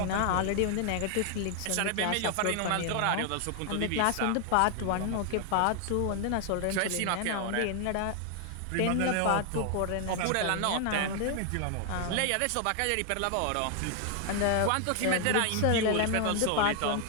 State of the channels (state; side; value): different; both; correlation 0.00